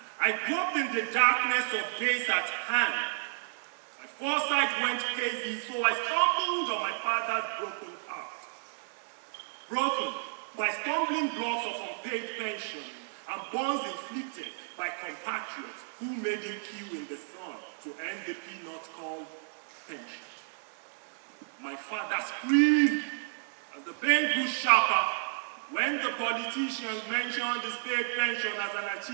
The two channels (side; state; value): left; silent; digital silence